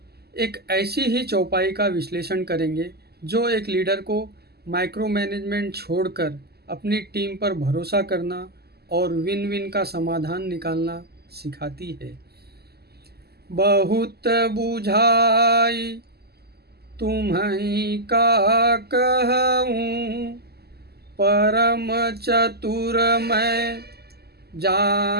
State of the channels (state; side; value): late; left; 0.46 ms